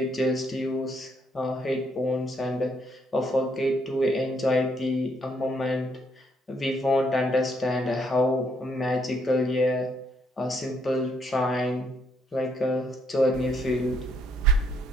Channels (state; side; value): normal; both; correlation 0.72